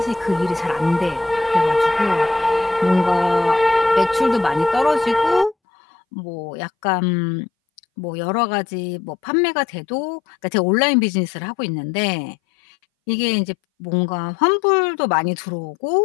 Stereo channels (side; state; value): right; drops out; at 5.6 s